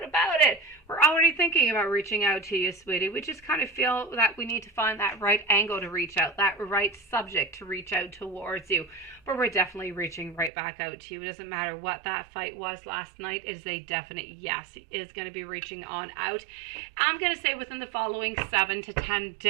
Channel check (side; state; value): left; drops out; at 10.5 s